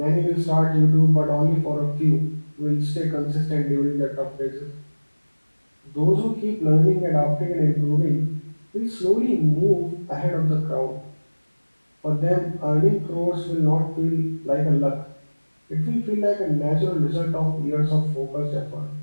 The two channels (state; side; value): inverted; both; correlation -1.00